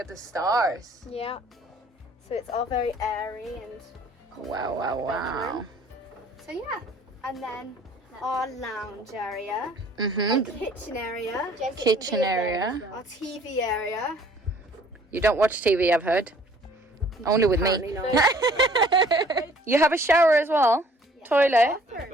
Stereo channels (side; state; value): both; normal; correlation 0.56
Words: the stars. Yeah. So it's all very airy and Wow, wow, wow. so yeah. And then our lounge area, our Mm-hmm. kitchen area, Kitchen area. our TV area. You don't watch TV, I've heard. Only with me. Apparently not. You have a shower as well? Toilet?